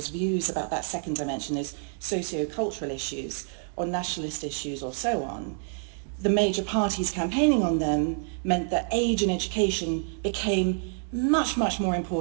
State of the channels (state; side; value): silent; left; digital silence